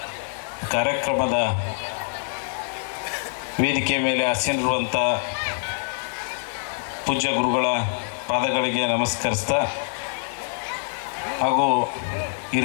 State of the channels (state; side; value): silent; right; digital silence